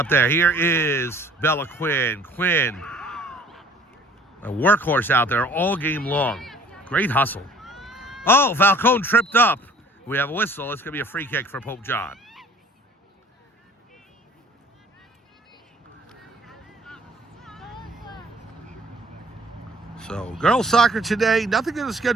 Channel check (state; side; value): normal; both; correlation 0.53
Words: there. Here is Bella Quinn. Quinn, a workhorse out there all game long. Great hustle. Oh, Falcone tripped up. We have a whistle. It's going to be a free kick for Pope John. So, girls soccer today. Nothing on the